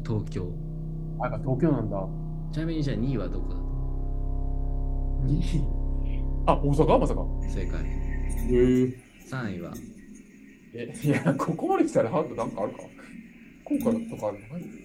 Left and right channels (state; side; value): identical; both; correlation 1.00